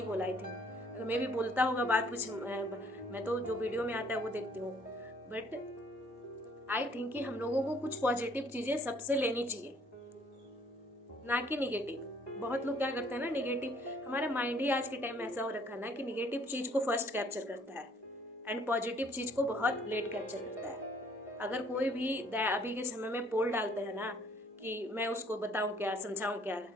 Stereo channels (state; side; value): normal; both; correlation 0.61